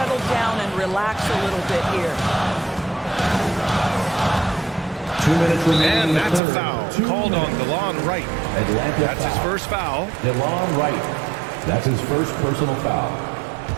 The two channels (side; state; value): left; drops out; at 6.4 s